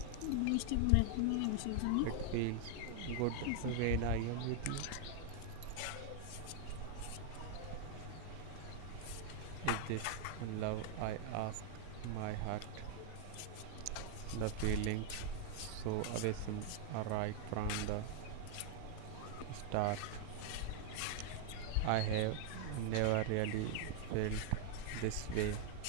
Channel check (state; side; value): different; both; correlation 0.00